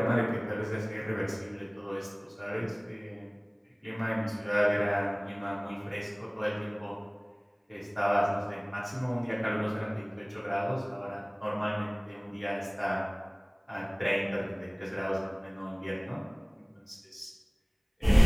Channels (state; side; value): identical; both; correlation 1.00